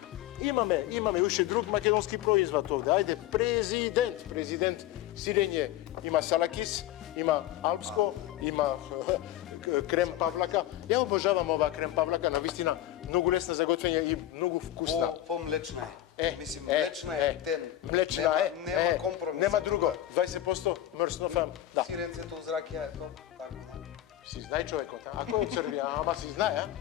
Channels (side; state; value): right; quieter; 13.3 dB